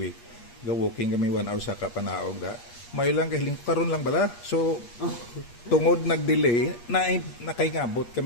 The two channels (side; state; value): right; late; 8.4 ms